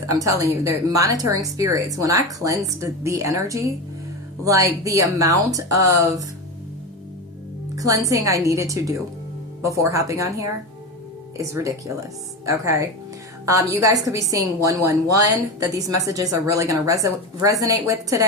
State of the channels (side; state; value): both; normal; correlation 0.21